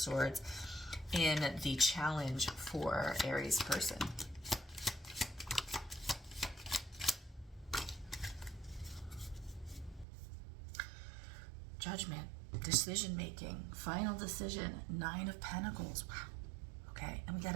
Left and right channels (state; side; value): drops out; left; at 10.1 s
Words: in the challenge for Aries person. Judgment, decision making, final decision, Nine of Pentacles. Wow. Okay, and we got